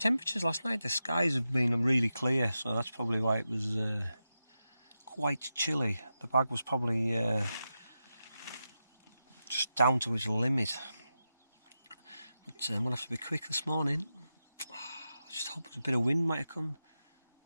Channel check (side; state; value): both; inverted; correlation -0.90